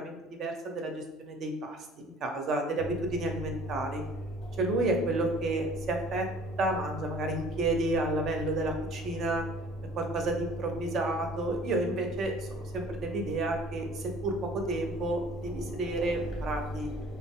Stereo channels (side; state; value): both; normal; correlation 0.51